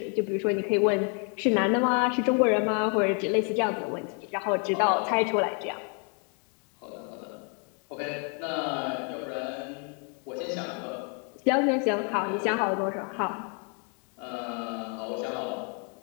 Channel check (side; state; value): right; quieter; 39.1 dB